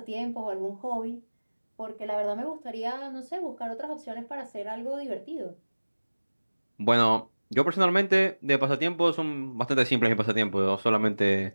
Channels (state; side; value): inverted; both; correlation -1.00